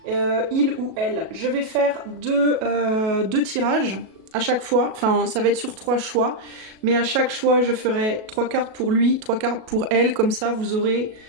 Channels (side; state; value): left; late; 37 ms